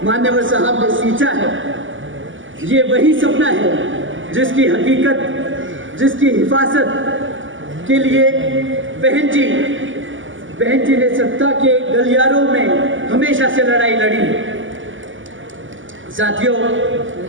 मान्यवर साहब ने सींचा है। ये वही सपना है जिसकी हकीकत, जिसकी हिफाजत के लिए बहन जी ने सत्ता के गलियारों में हमेशा से लड़ाई लड़ी है। साथियों,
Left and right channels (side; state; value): left; late; 0.57 ms